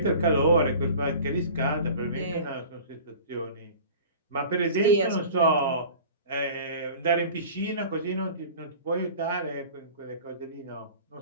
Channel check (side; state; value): both; inverted; correlation -0.41